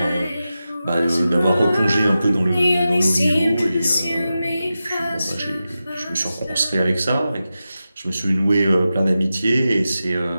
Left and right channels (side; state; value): both; inverted; correlation -0.92